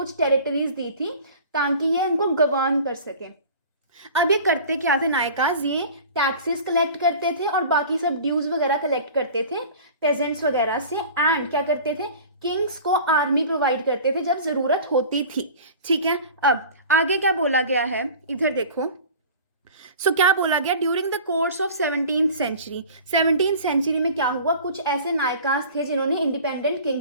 टेरिटरीज दी थी ताकि ये इनको गवर्न कर सके. अब ये करते क्या थे नायकाज, ये टैक्सेस कलेक्ट करते थे और बाकी सब ड्यूज वगैरह कलेक्ट करते थे पेजेंट्स वगैरह से, एंड क्या करते थे, किंग्स को आर्मी प्रोवाइड करते थे जब ज़रूरत होती थी. ठीक है, अब आगे क्या बोला गया है, इधर देखो. क्या बोला गया, during the course of 17th century में क्या हुआ, कुछ ऐसे नायकास थे जिन्होंने इंडिपेंडेंट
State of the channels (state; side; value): inverted; both; correlation -0.40